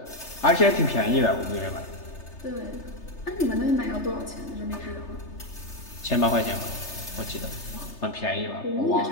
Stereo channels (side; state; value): right; late; 3.3 ms